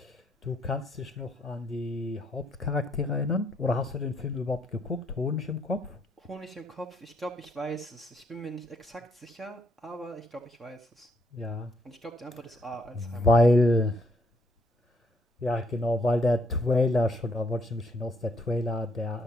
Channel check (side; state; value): both; normal; correlation 0.71